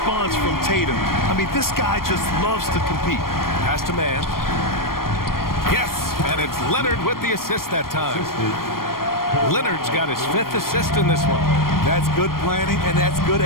from Tatum. I mean, this guy just loves to compete. Pass to man. Yes, and it's Leonard with the assist that time. Leonard's got his 5th assist in this one. That's good planning, and that's good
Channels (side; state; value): right; late; 0.92 ms